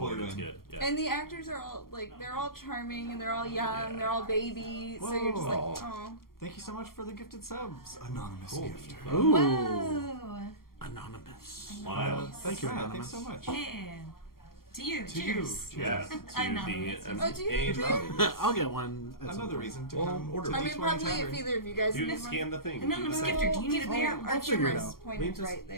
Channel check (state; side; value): late; right; 0.92 ms